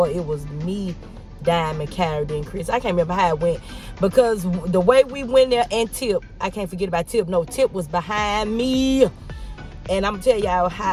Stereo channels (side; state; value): both; identical; correlation 1.00